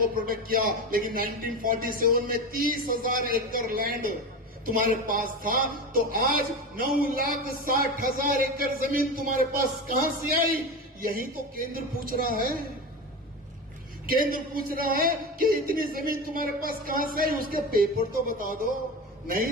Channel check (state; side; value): normal; both; correlation 0.24